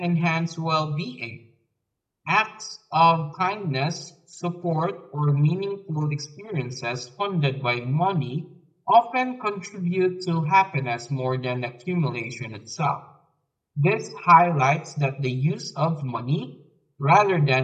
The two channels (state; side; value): identical; both; correlation 1.00